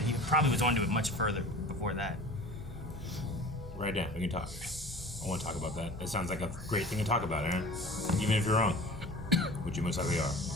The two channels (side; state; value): both; normal; correlation 0.39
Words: He probably was on to it much further before that. Right now, we can talk. I want to talk about that. It sounds like a great thing to talk about, Aaron. Even if you're wrong, which you most likely are.